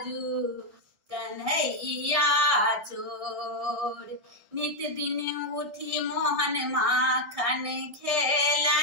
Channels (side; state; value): left; late; 1.7 ms